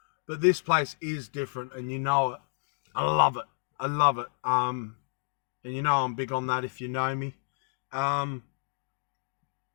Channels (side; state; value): right; silent; digital silence